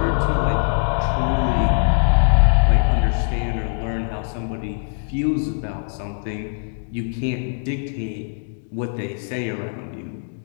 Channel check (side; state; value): right; silent; digital silence